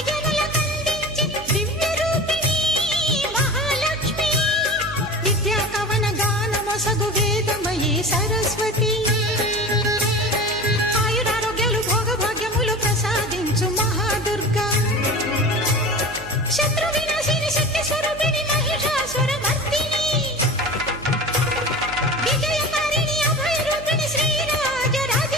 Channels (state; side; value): noise; right; hum, 14 dB below the sound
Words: జనులకందించి దివ్య రూపిణి మహాలక్ష్మి, విద్యా కవన గానమొసగు వేదమయీ సరస్వతి, మహాదుర్గా శత్రు వినాశిని శక్తి స్వరూపిణి మహిషాసుర మర్దిని, విజయకారిణి అభయ రూపిణి శ్రీరాజ